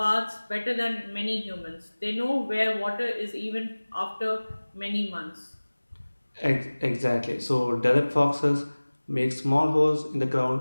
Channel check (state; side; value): inverted; both; correlation -1.00